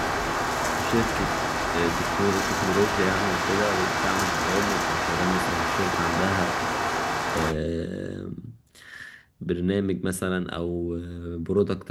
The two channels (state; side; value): identical; both; correlation 1.00